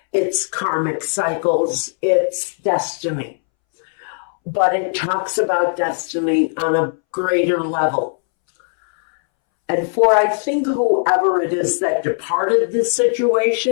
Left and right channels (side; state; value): right; silent; 66 dB below the other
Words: It's karmic cycles, it's destiny. But it talks about destiny on a greater level. And for, I think, whoever it is that departed this